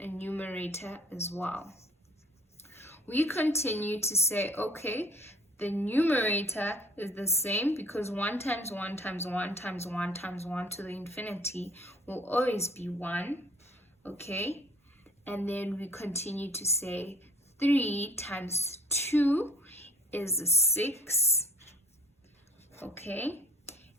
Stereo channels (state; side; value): normal; both; correlation 0.54